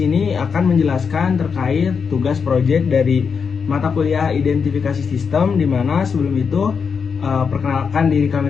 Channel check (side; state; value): right; quieter; 6.0 dB